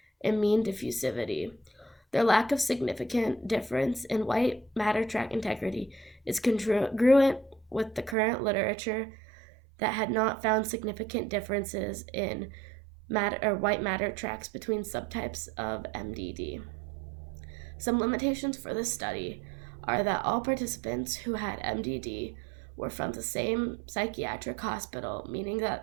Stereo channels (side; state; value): left; drops out; at 8.2 s